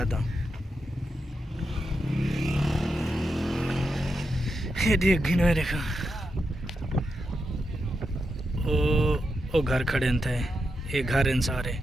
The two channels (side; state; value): both; normal; correlation 0.86